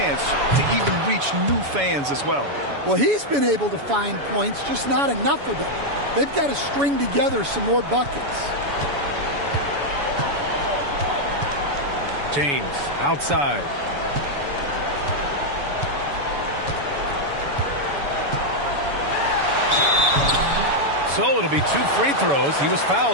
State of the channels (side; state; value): left; late; 7.0 ms